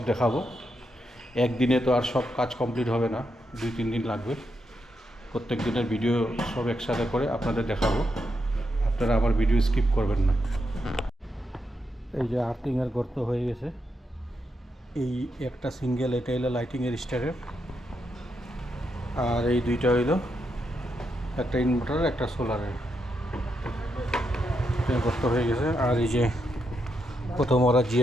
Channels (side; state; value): both; normal; correlation 0.82